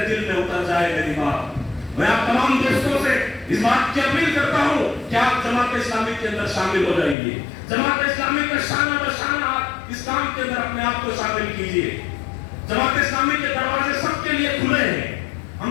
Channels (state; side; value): drops out; right; at 7.2 s